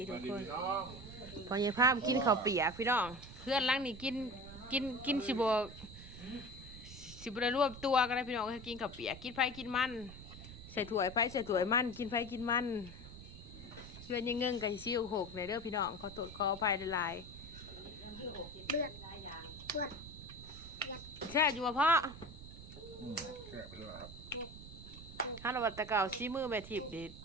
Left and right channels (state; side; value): noise; right; rumble, 14 dB below the sound